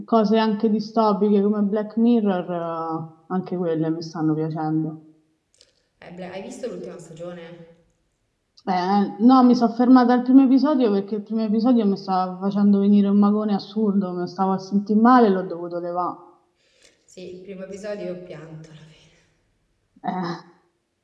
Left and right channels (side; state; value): both; identical; correlation 1.00